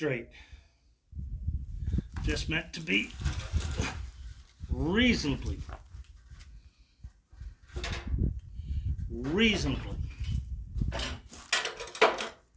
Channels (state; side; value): identical; both; correlation 1.00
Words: Just meant to be reasonably.